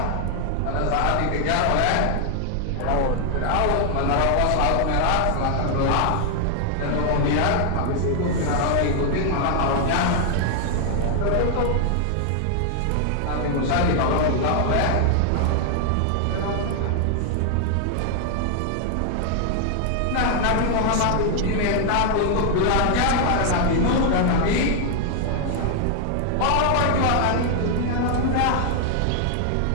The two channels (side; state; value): both; different; correlation 0.00